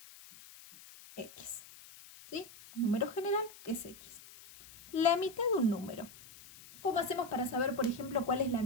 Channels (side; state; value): left; noise; hiss, 19 dB below the sound